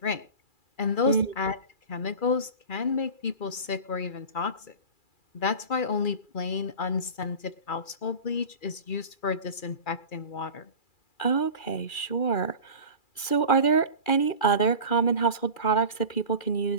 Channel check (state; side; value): late; right; 2.4 ms